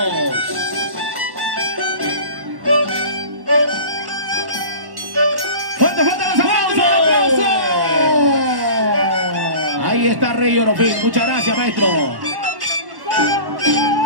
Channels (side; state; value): left; late; 1.1 ms